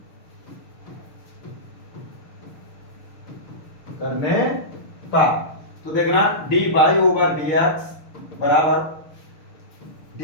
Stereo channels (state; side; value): late; right; 6.5 ms